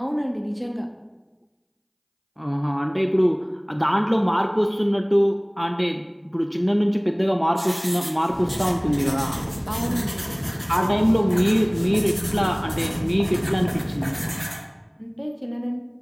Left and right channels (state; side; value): identical; both; correlation 1.00